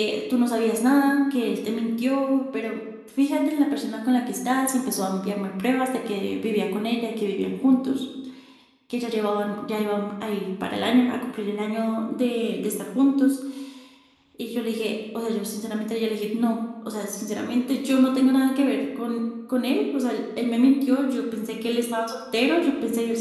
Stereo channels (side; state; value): both; identical; correlation 1.00